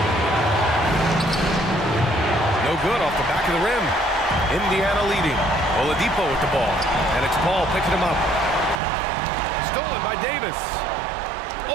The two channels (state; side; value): drops out; left; at 8.8 s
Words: No good off the back of the rim. Indiana leading. Oladipo with the ball. And it's Paul picking him up. Stolen by Davis.